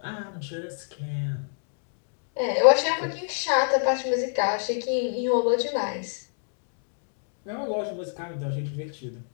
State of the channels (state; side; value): silent; right; digital silence